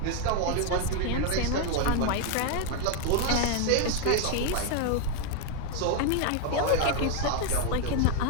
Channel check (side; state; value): both; different; correlation 0.01